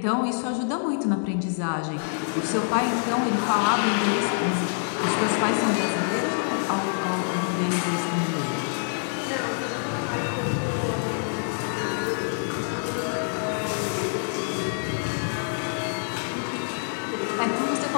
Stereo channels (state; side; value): silent; right; digital silence